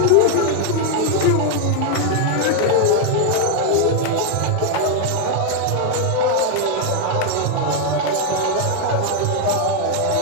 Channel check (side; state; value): both; different; correlation 0.00